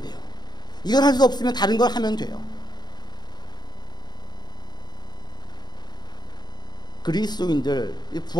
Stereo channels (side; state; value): right; late; 0.20 ms